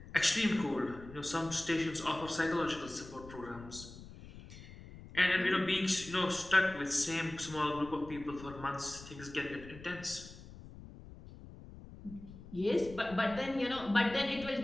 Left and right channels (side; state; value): left; noise; rumble, 16 dB below the sound